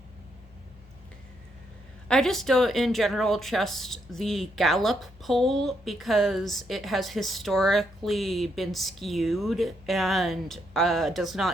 I just don't, in general, trust the Gallup poll because it has historically been skewed and does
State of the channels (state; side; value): normal; both; correlation 0.76